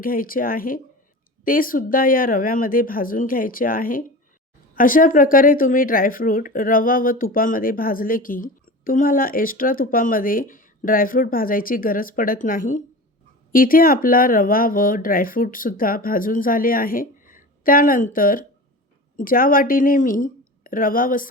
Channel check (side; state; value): both; normal; correlation 0.33